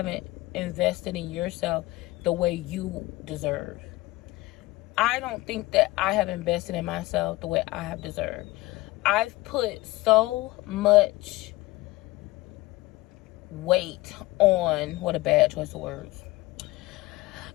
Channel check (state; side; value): quieter; right; 19.8 dB